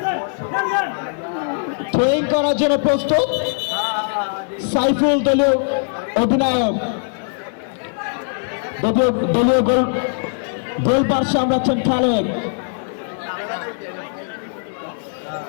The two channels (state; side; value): silent; right; 65 dB below the other